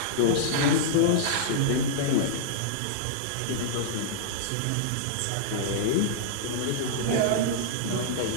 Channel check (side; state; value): both; different; correlation -0.02